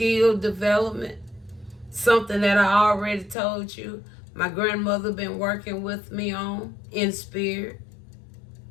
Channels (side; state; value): right; drops out; at 3.4 s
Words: development, something that I already told you my grandmother been working with me on in spirit,